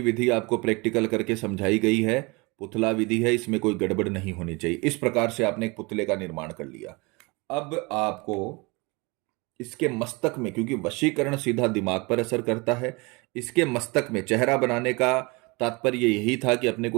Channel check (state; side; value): quieter; left; 26.8 dB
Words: विधि आपको प्रैक्टिकल करके समझाई गई है। पुतला विधि है, इसमें कोई गड़बड़ नहीं होनी चाहिए। इस प्रकार से आपने एक पुतले का निर्माण कर लिया। अब आपको इसके मस्तक में, क्योंकि वशीकरण सीधा दिमाग पर असर करता है, इसके मस्तक में चेहरा बनाने का तात्पर्य यही था कि अपने